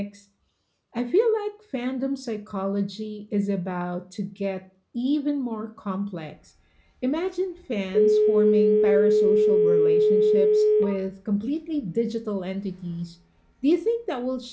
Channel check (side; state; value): both; identical; correlation 1.00